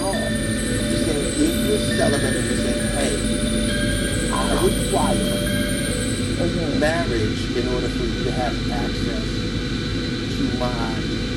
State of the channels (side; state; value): both; identical; correlation 1.00